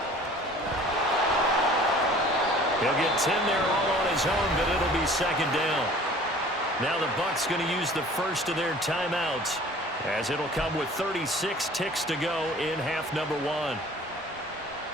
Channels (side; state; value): both; normal; correlation 0.48